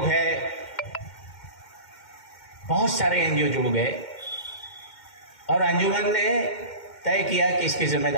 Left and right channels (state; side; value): late; right; 2.1 ms